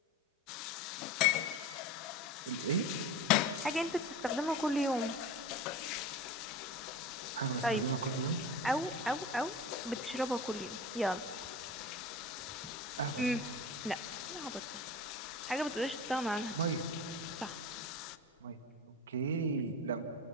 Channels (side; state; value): both; normal; correlation 0.32